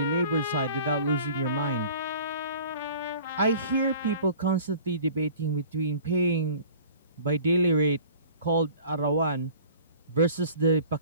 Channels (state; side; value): inverted; both; correlation -0.46